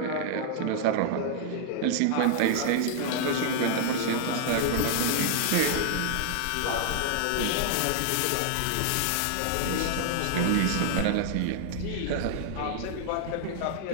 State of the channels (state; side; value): different; both; correlation -0.01